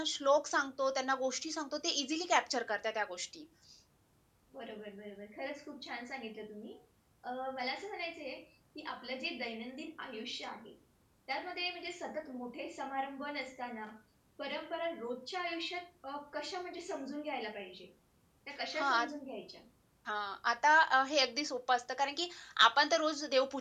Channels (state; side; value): identical; both; correlation 1.00